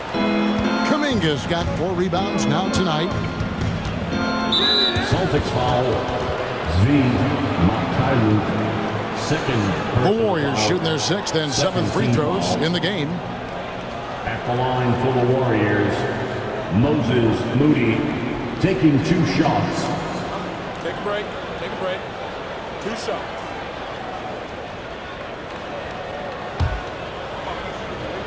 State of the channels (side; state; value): both; identical; correlation 1.00